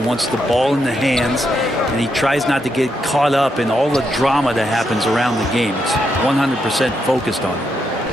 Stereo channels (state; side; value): normal; both; correlation 0.81